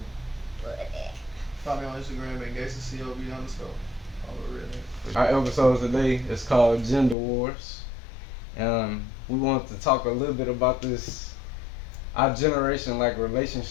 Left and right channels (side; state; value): right; drops out; at 7.2 s